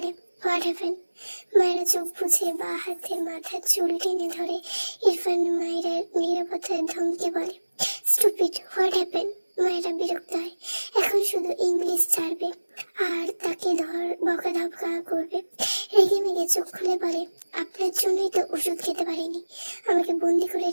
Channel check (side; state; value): both; inverted; correlation -1.00